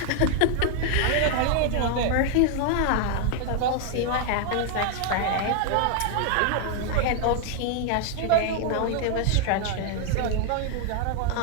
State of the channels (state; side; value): different; both; correlation 0.00